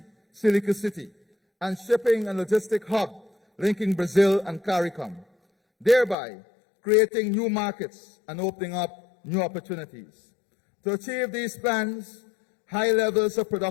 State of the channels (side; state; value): right; drops out; at 6.2 s